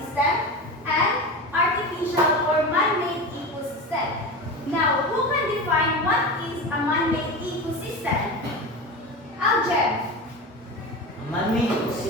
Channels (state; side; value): normal; both; correlation 0.26